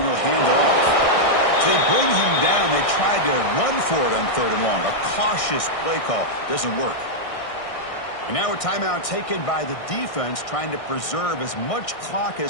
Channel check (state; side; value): late; right; 1.6 ms